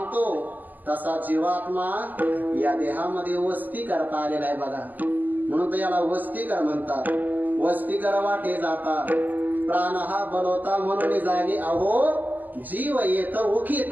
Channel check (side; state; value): left; late; 0.084 ms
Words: तसा जीवात्मा या देहामध्ये वस्ती करता आलेला आहे बघा. म्हणून तर याला वस्तीकर म्हणतात. वस्तीकर वाटे जाता प्राण हा बलवता म्हणून जागे अहो जीव येत